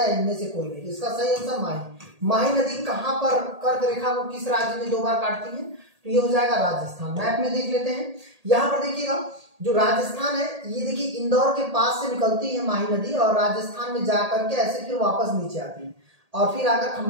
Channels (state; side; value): late; left; 1.8 ms